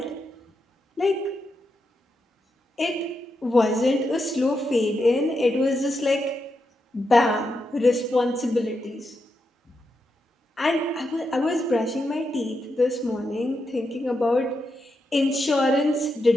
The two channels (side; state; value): both; normal; correlation 0.85